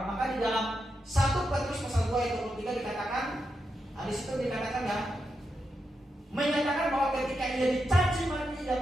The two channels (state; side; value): normal; both; correlation 0.85